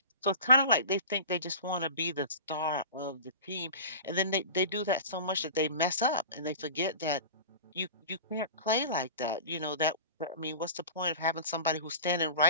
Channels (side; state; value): both; inverted; correlation -0.35